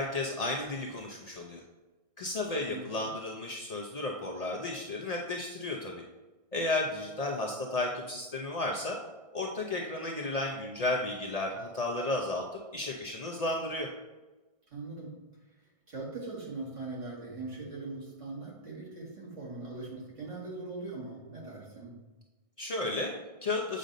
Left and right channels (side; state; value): left; late; 1.6 ms